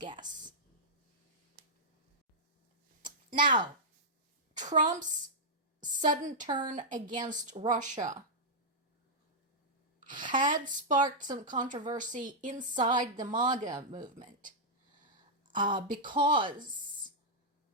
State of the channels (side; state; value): both; normal; correlation -0.08